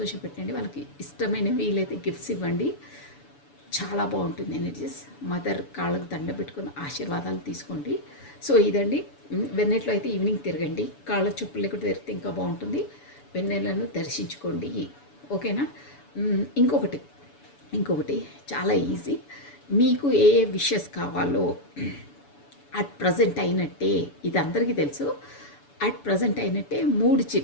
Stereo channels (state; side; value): late; right; 7.0 ms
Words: వాళ్ళకి ఇష్టమైన వీలైతే గిఫ్ట్స్ ఇవ్వండి. చాలా బాగుంటుంది ఎనర్జీస్. మదర్ కాళ్ళకు దండ పెట్టుకుని ఆశీర్వాదాలు తీసుకోండి. సో ఇదండి. వెన్నెట్లో అయితే ఈవినింగ్ తిరగండి. కాళ్ళ చెప్పులు లేకుండా తిరిగితే ఇంకా బాగుంటుంది. వెన్నెలను దర్శించుకోండి. ఓకేనా? ఇంకొకటి చాలా ఈజీ. మీకు ఏ విషెస్ కావాలో అట్ ప్రజెంట్ అయినట్టే, ఇది అందరికీ తెలుసు, అట్ ప్రజెంట్ అయినట్టే 3